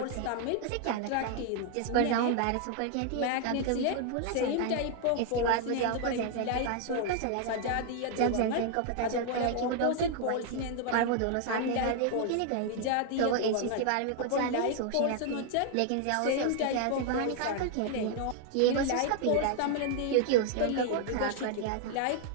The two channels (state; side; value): different; both; correlation 0.00